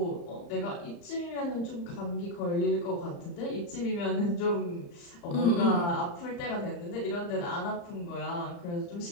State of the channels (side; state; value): right; late; 35 ms